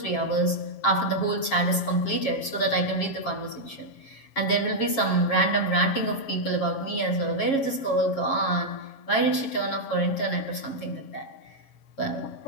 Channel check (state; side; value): late; right; 7.2 ms